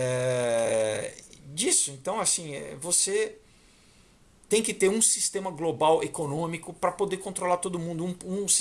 Disso, então, assim, você tem que ter um sistema global econômico para poder controlar todo mundo, um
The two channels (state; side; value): identical; both; correlation 1.00